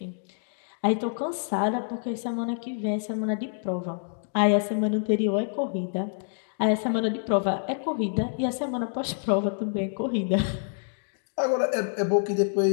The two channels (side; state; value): right; silent; digital silence